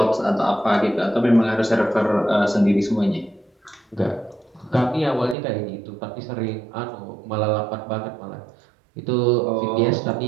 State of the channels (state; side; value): drops out; left; at 5.4 s